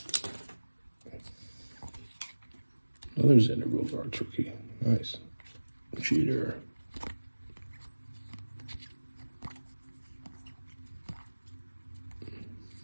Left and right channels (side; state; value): both; inverted; correlation -1.00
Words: Another Xander Bogaerts rookie. Nice. Cheater.